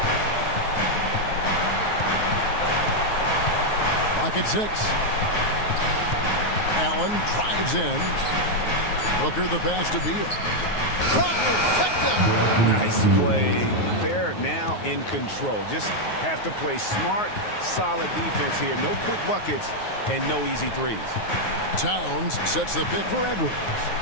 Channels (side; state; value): right; late; 9.4 ms